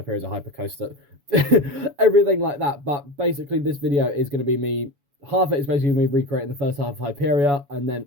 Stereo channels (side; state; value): left; late; 7.1 ms